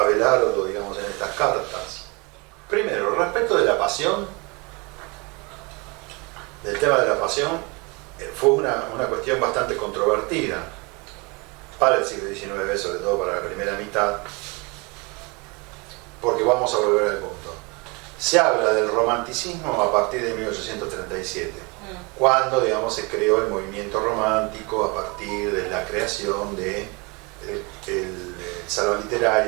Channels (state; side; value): quieter; left; 28.7 dB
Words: digamos, en estas cartas. Primero, respecto de la pasión, del tema de la pasión, fue una cuestión bastante controvertida para el siglo XIX, sobre todo para la primera mitad, porque vamos a volver al punto. Se habla del romanticismo a partir de 1837, cuando, digamos, se creó el movimiento romántico a partir de la creación del salón